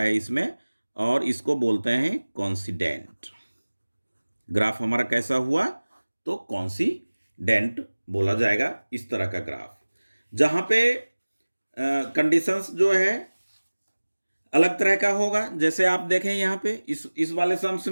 इसमें, और इसको बोलते हैं कॉन्सिडेंट। ग्राफ हमारा कैसा हुआ, तो कॉन्सिडेंट बोला जाएगा इस तरह का ग्राफ, जहां पे कंडीशंस जो है अलग तरह का होगा। जैसे आप देखें यहां पे इस वाले सम्स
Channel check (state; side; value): inverted; both; correlation -1.00